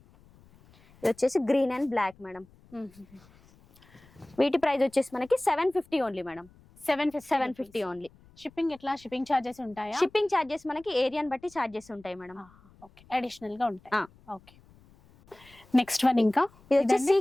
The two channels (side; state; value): left; noise; rumble, 27 dB below the sound